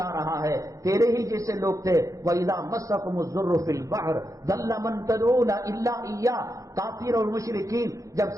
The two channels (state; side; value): late; left; 0.16 ms